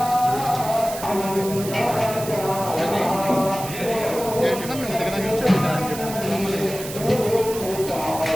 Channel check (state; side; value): noise; right; hiss, 11 dB below the sound